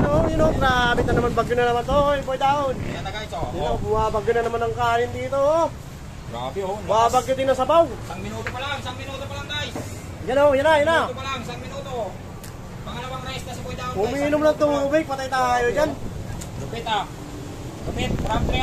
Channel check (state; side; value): identical; both; correlation 1.00